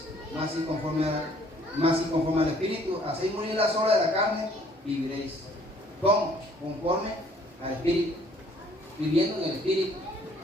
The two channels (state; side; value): normal; both; correlation 0.59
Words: más si conforme al Espíritu hacéis morir las obras de la carne, viviréis. ¿Cómo? Conforme al Espíritu, viviendo en el Espíritu,